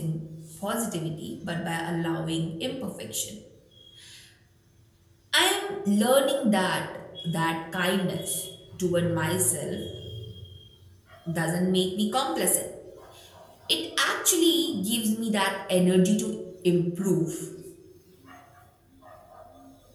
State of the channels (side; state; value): both; identical; correlation 1.00